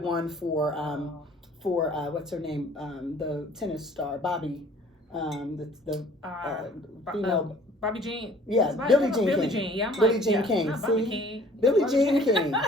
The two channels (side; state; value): both; normal; correlation 0.53